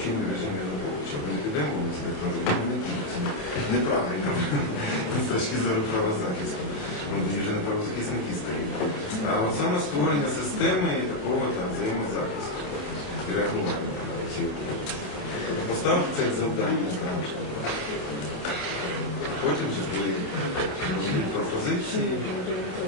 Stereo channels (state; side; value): late; right; 27 ms